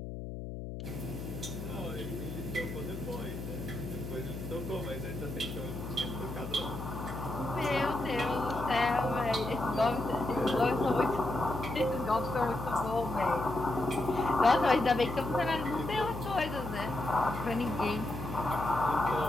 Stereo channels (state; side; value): noise; left; hum, 8 dB below the sound